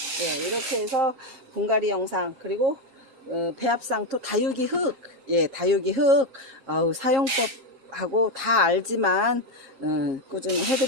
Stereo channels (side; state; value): left; late; 3.8 ms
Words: 예, 이렇게 해서 분갈이 영상 그리고 배합상토 다육이 흙, 예, 다육이 흙 사용법 하고 다 알지만 꾸준히